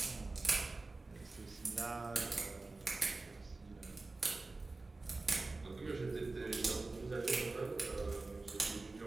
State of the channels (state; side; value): quieter; left; 3.4 dB